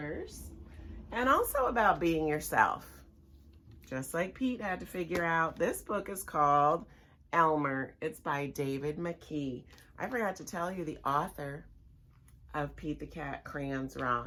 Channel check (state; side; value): identical; both; correlation 1.00